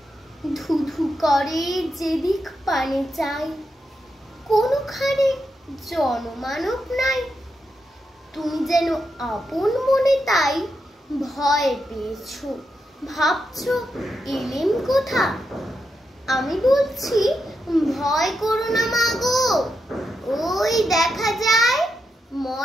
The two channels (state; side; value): normal; both; correlation 0.85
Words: ধুধু করে যেদিক পানে চাই, কোনোখানে জনমানব নাই। তুমি যেন আপন মনে তাই ভয় পেয়েছো, ভাবছো এলেম কোথা। আমি বলছি ভয় করো না মা গো, ওই দেখা যায়